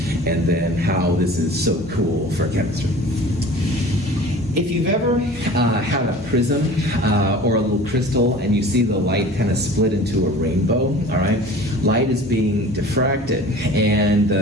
and then how this is so cool for chemistry. If you've ever had a prism or a little crystal and you see the light kind of split into a rainbow, all right? Light is being diffracted, and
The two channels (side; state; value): both; normal; correlation 0.42